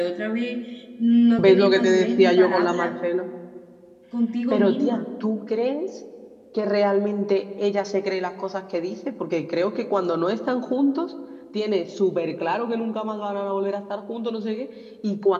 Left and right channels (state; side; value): identical; both; correlation 1.00